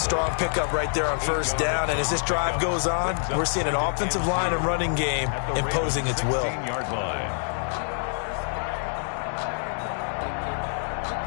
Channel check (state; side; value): silent; right; 61 dB below the other